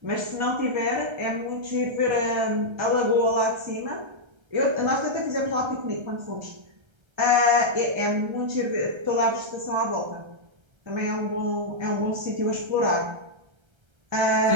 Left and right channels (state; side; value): late; left; 1.3 ms